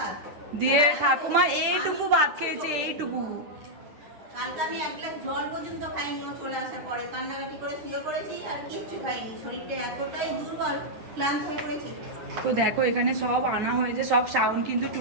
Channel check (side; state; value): left; late; 10 ms